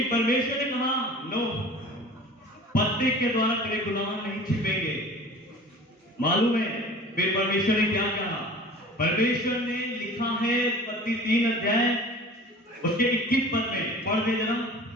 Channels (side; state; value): both; normal; correlation 0.42